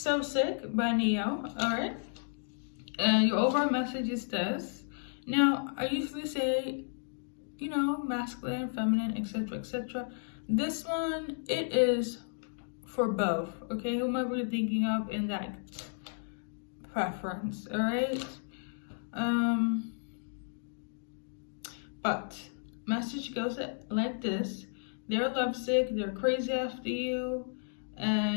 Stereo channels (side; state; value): right; silent; digital silence